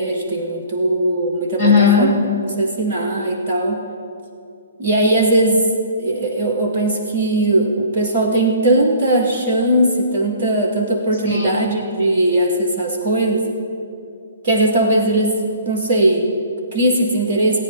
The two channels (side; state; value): both; inverted; correlation -0.48